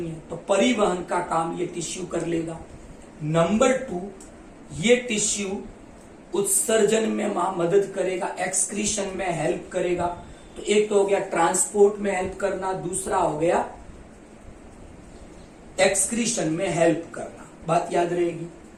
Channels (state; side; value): identical; both; correlation 1.00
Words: है, तो परिवहन का काम ये टिश्यू कर लेगा। नंबर 2, ये टिश्यू उत्सर्जन में मदद करेगा, एक्सक्रीशन में हेल्प करेगा। तो एक तो हो गया ट्रांसपोर्ट में हेल्प करना, दूसरा हो गया एक्सक्रीशन में हेल्प करना, बात याद रहेगी।